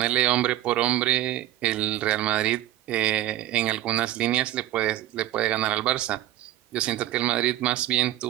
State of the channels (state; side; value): quieter; left; 13.9 dB